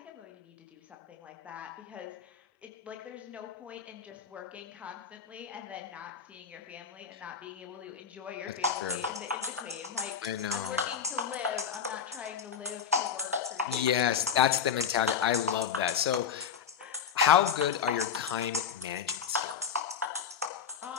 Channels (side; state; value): right; quieter; 7.5 dB